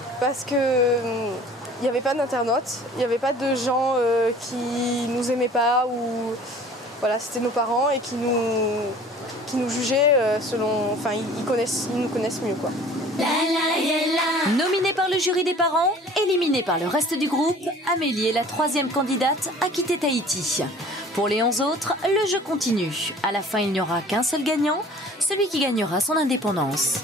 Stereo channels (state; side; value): normal; both; correlation 0.48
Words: parce que il n'y avait pas d'internautes, il n'y avait pas de gens qui nous aimaient pas ou voilà, c'était nos parents et qui nous jugeaient selon, enfin ils nous connaissent mieux quoi. Nominée par le jury des parents, éliminée par le reste du groupe, Amélie est la 3e candidate à quitter Tahiti. Pour les 11 autres, le jeu continue. À la fin, il n'y aura qu'un seul gagnant, celui qui gagnera son indépendance.